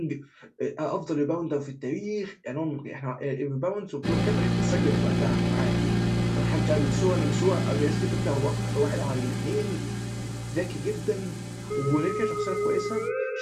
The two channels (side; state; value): both; identical; correlation 1.00